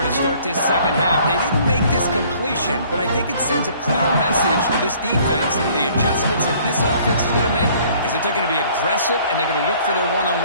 to start this second half. They didn't make this completion, but I think it sends a clear message to this defense that the adjustments that this offense is going to make is that they're going to be aggressive and they're going to look for their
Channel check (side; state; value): both; inverted; correlation -0.57